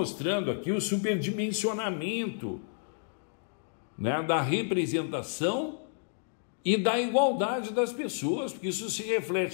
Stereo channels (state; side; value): silent; right; digital silence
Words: aqui o superdimensionamento, né, da representação e da igualdade das pessoas, porque isso se